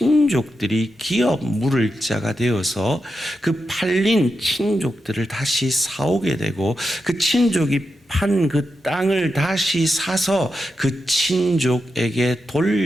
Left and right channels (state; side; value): normal; both; correlation 0.88